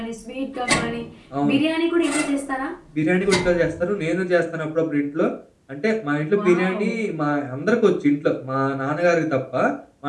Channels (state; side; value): identical; both; correlation 1.00